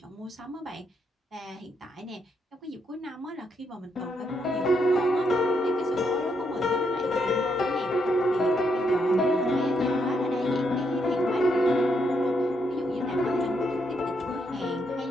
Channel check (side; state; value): both; normal; correlation 0.78